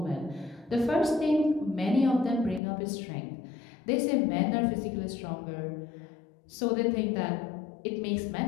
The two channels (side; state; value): right; drops out; at 2.6 s